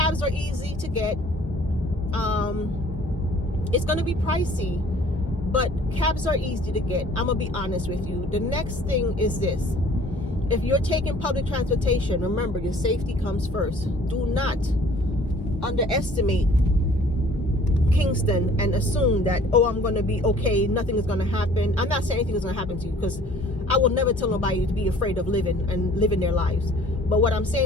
are easy to get. It's going to be pricey, but cabs are easy to get. I'm gonna be honest with you. The next thing is this: if you're taking public transportation, remember your safety comes first. Do not underestimate Kingston and assume that, oh, I'm gonna be okay, nothing is gonna happen. I'm not saying anything is gonna happen to you, because I will never tell nobody to be afraid of living their lives. But what I'm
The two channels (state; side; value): normal; both; correlation 0.53